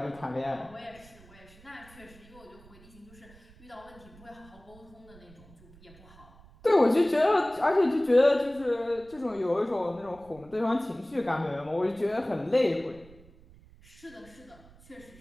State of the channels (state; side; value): noise; right; rumble, 24 dB below the sound